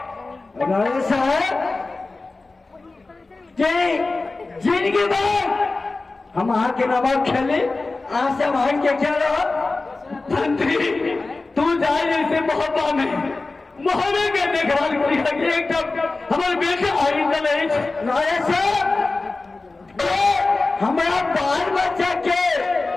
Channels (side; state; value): right; quieter; 3.5 dB